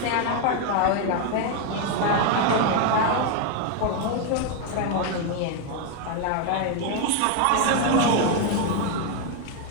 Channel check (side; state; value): both; different; correlation 0.01